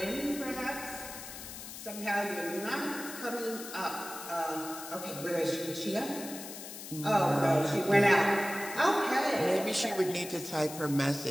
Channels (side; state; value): left; noise; hiss, 11 dB below the sound